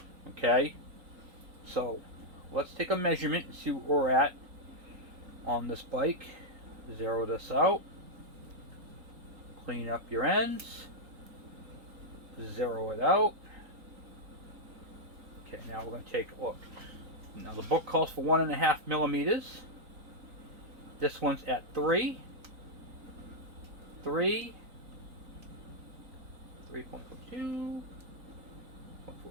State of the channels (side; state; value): left; late; 4.0 ms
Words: Okay? So let's take a measurement and see where we're at on this bike. Zero this out. Clean up your ends. Zero it out. Okay, now we're going to take a look. Now the book calls for 1.5 millimeters. This one's at 3. 3. 3.42.